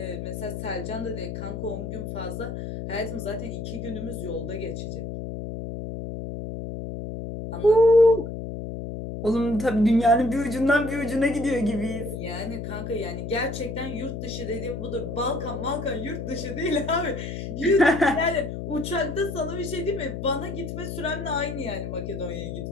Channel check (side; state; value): left; noise; hum, 6 dB below the sound